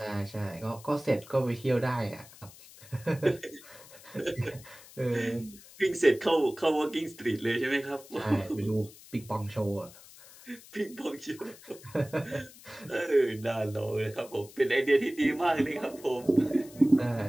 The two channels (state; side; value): noise; left; hiss, 20 dB below the sound